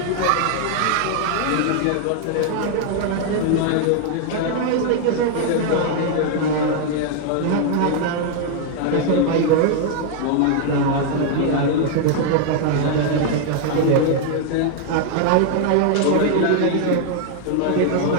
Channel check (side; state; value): both; different; correlation 0.00